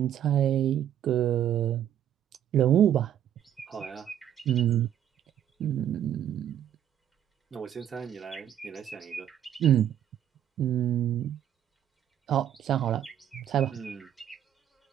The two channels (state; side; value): quieter; left; 10.4 dB